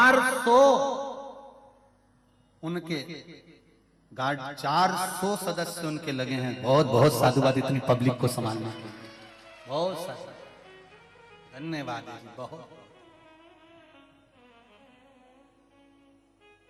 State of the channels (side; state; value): both; identical; correlation 1.00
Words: उनके गार्ड, 400 सदस्य उनके लगे हैं। बहुत बहुत साधुवाद इतनी पब्लिक को संभालने के लिए, बहुत सारा धन्यवाद है जी, बहुत।